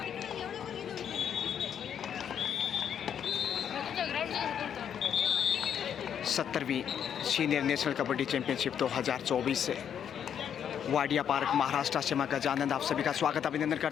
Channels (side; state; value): right; quieter; 8.7 dB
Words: सत्तरवीं सीनियर नेशनल कबड्डी चैंपियनशिप 2024 से वाडिया पार्क महाराष्ट्र से मैं गजानंद आप सभी का स्वागत अभिनंदन